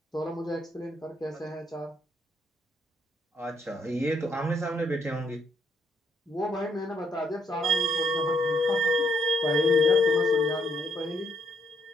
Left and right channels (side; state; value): both; normal; correlation 0.73